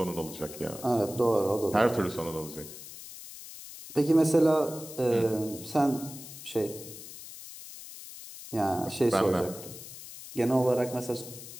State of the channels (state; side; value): noise; left; hiss, 14 dB below the sound